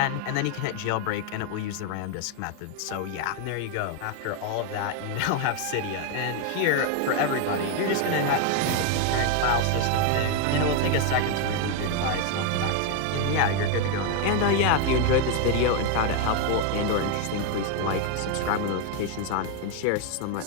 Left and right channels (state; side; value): different; both; correlation 0.01